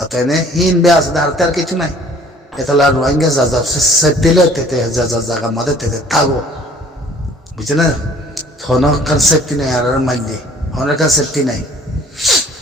অতএব হিন বে আছে আর কিছু নাই এতলা রোহিঙ্গা যা দিলে তেতে যা জায়গা মাঝে তেতে থাকো বুঝছে না হনর কনসেপ্টই নাই আর মাইন্ডে হনের কনসেপ্টই নাই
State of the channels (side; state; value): both; normal; correlation 0.53